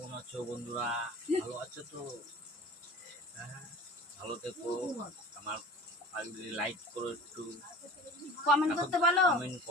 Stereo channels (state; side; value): normal; both; correlation 0.40